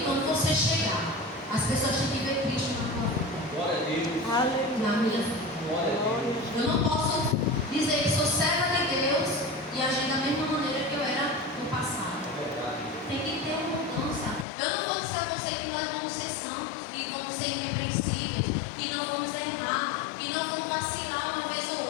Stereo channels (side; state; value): right; drops out; at 14.5 s